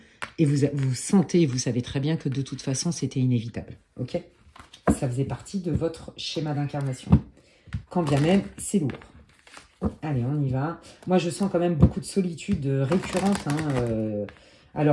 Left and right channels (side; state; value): both; identical; correlation 1.00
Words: Et vous sentez, vous savez très bien que de toute façon, c'était inévitable. Ok? Ça faisait partie de votre schéma d'incarnation. Quand bien même, c'est lourd. Allez, on y va. Moi, je sens quand même beaucoup de solitude récurrente. Hein,